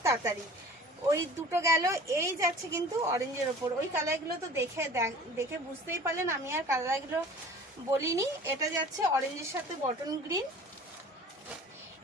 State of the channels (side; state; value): both; normal; correlation 0.44